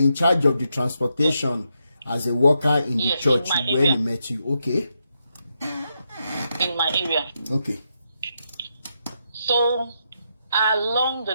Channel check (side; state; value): both; inverted; correlation -0.82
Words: charge of the transportation as a worker in the church when he met you. Okay. In my area. Okay. So, along the